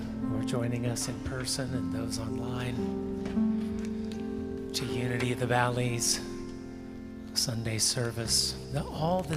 are joining us in person and those online to Unity of the Valleys Sunday service. All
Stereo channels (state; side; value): identical; both; correlation 1.00